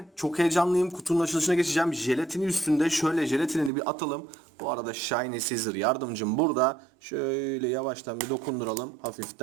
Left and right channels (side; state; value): left; drops out; at 3.7 s